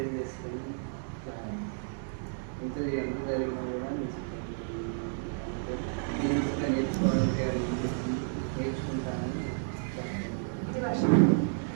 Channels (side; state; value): left; silent; digital silence